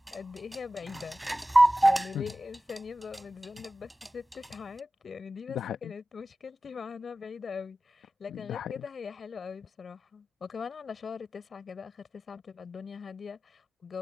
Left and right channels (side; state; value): both; normal; correlation 0.95